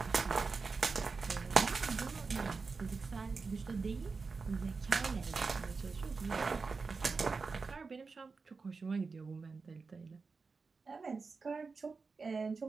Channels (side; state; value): left; quieter; 4.5 dB